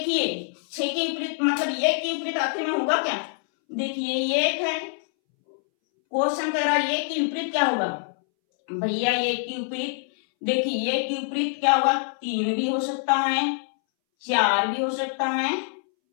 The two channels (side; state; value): right; silent; 62 dB below the other